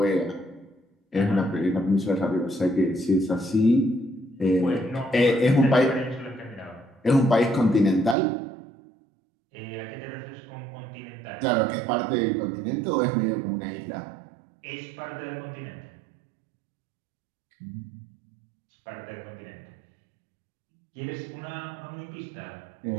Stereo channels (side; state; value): left; drops out; at 8.2 s